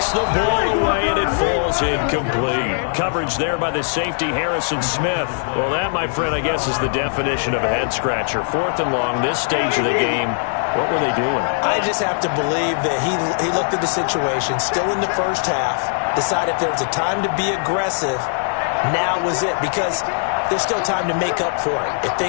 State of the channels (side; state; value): right; silent; 66 dB below the other